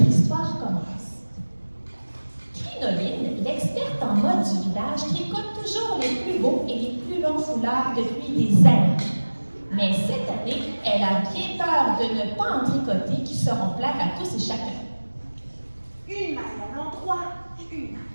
histoire commence. Crinoline, l'experte en mode du village, tricote toujours les plus beaux et les plus longs foulards depuis des années. Mais cette année, elle a bien peur de ne pas en tricoter qui seront plaire à tous et chacun. Une maille à l'endroit, une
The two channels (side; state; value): both; inverted; correlation -1.00